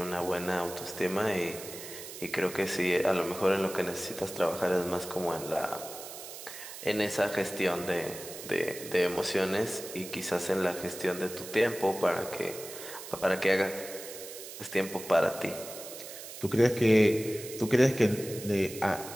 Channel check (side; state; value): right; noise; hiss, 12 dB below the sound